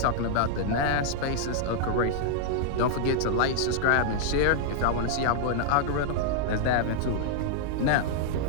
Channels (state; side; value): different; both; correlation -0.01